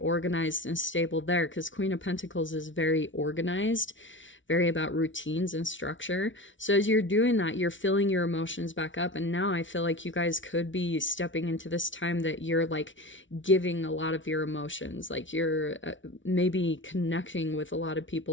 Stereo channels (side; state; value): right; late; 0.56 ms